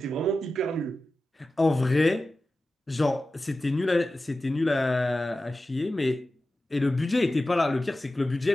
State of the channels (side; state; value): both; normal; correlation 0.94